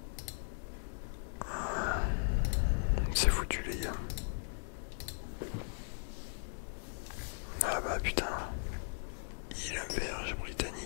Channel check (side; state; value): right; silent; digital silence